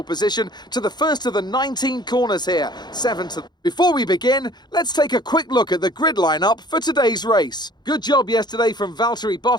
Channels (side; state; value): right; late; 0.21 ms